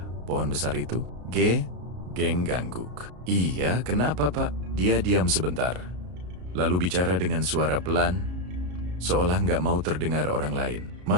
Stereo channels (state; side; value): late; left; 33 ms